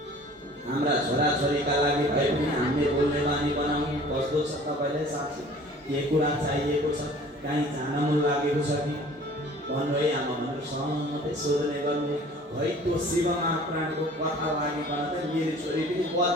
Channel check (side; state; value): both; normal; correlation 0.48